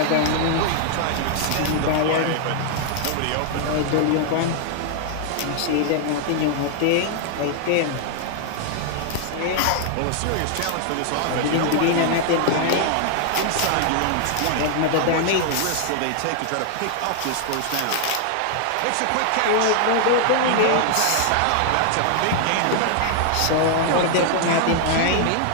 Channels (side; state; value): both; different; correlation 0.00